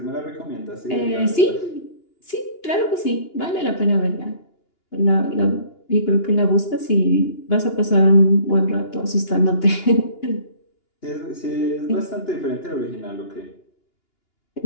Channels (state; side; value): late; right; 2.9 ms